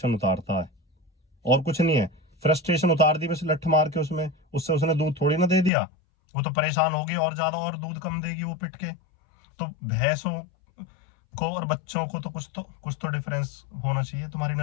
उतारता है और कुछ नहीं है। फ्रस्ट्रेशन उतार दी बस लठ मार के उसमें, उससे उसने दूध थोड़ी ना दे दिया, वो तो परेशान होगी और ज्यादा, और दूध कम देगी वो पिट के। तो भैंसों को और बच्चों को तो कुछ तो डिफरेंस होना चाहिए तुम्हारी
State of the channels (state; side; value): drops out; right; at 5.7 s